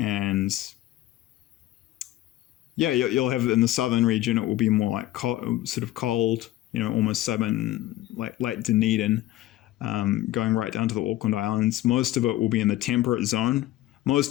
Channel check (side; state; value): right; quieter; 15.3 dB